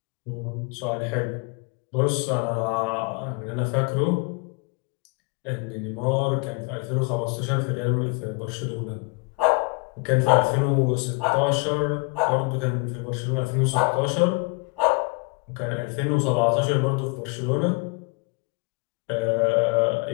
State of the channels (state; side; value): quieter; right; 29.5 dB